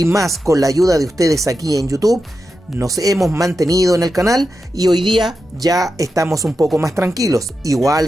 más con la ayuda de ustedes aquí en YouTube, nos hemos mantenido en el canal y hoy día ya estamos un poco más tranquilos. Igual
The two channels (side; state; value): both; normal; correlation 0.89